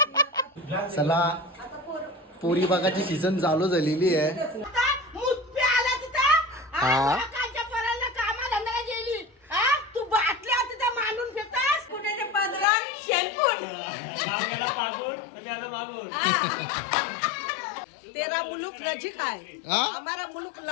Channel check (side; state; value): right; drops out; at 12.7 s